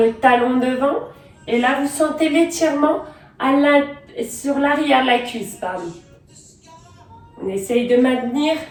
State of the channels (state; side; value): identical; both; correlation 1.00